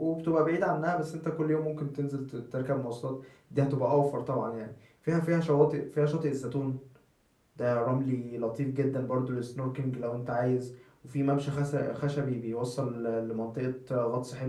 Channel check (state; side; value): identical; both; correlation 1.00